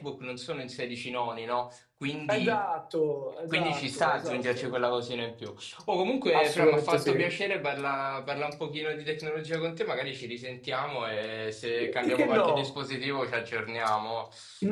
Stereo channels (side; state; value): both; identical; correlation 1.00